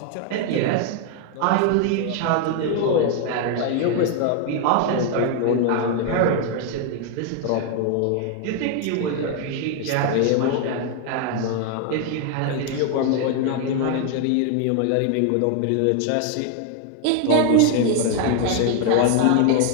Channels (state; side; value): different; both; correlation 0.01